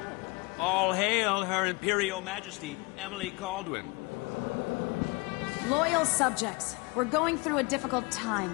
All hail Her Imperial Majesty, Emily Caldwin. Loyal subjects, we're going through a difficult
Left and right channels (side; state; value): right; quieter; 27.6 dB